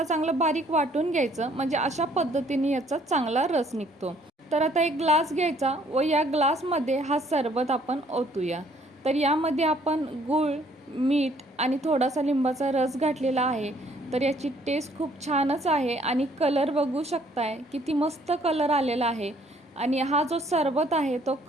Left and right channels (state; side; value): normal; both; correlation 0.62